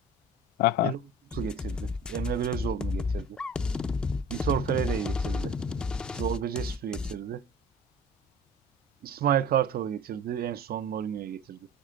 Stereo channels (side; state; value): both; normal; correlation 0.40